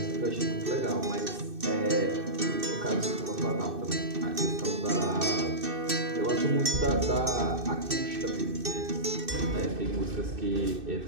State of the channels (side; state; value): left; late; 2.6 ms